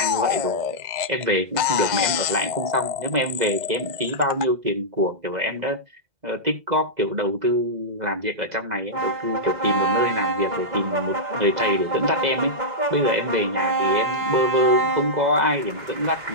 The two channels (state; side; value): late; left; 2.0 ms